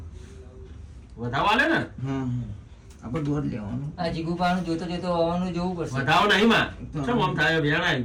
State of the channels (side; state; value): both; identical; correlation 1.00